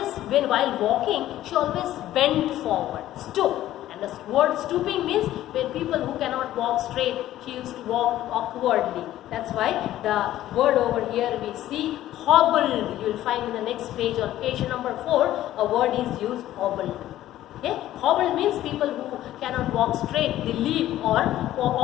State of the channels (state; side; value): quieter; right; 13.7 dB